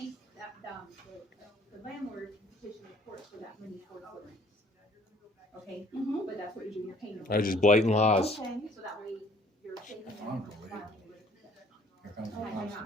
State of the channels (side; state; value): both; normal; correlation 0.58